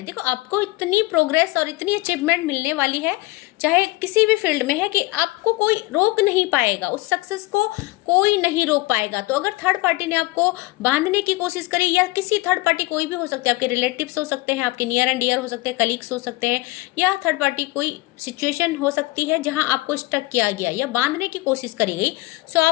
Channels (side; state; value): right; quieter; 21.2 dB